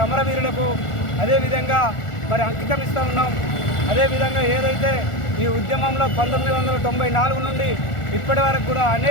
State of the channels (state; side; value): late; right; 1.4 ms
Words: అమరవీరులకు అదేవిధంగా మరి అంకితం ఇస్తూ ఉన్నాం. అదేవిధంగా ఏదైతే ఈ ఉద్యమంలో 1994 నుండి ఇప్పటి వరకు కూడా